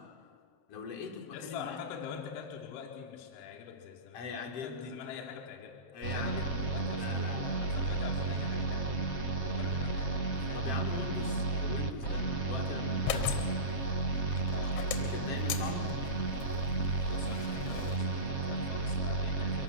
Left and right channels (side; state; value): right; late; 7.7 ms